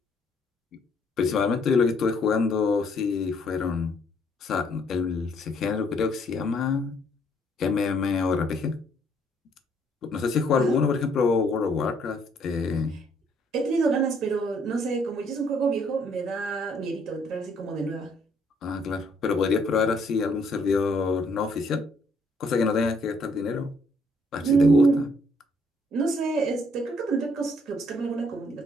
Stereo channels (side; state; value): both; normal; correlation 0.67